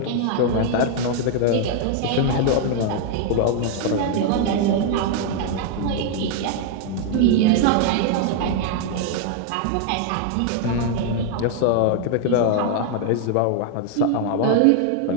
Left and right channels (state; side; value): different; both; correlation 0.00